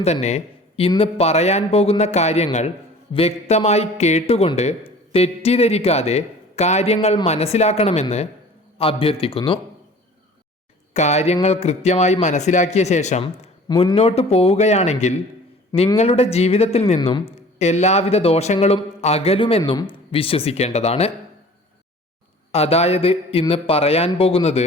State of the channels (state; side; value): normal; both; correlation 0.46